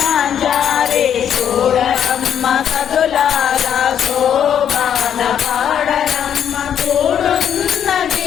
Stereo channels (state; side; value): quieter; right; 9.1 dB